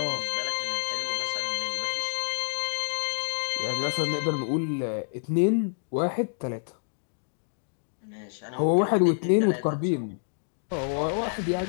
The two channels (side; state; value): right; silent; digital silence